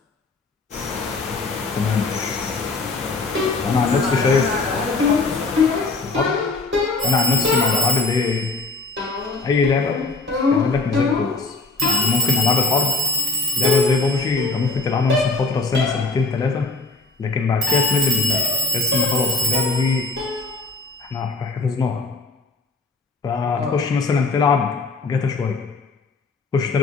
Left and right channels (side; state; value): right; quieter; 3.6 dB